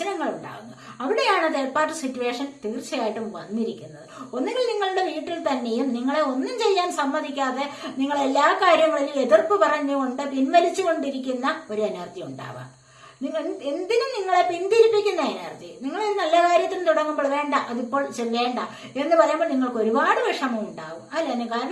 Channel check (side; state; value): both; identical; correlation 1.00